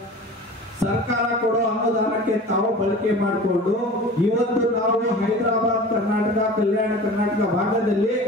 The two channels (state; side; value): normal; both; correlation 0.38